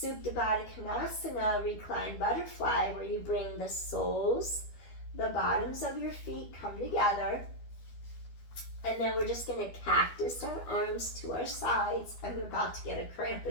Baddha Konasana, reclined butterfly, where you bring the soles, the bottoms of your feet come together. And then we're just going to cactus our arms to our sides. I'm about to get a cramp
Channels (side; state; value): right; late; 12 ms